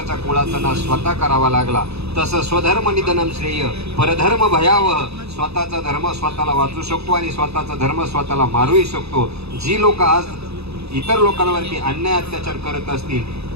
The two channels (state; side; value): late; left; 0.79 ms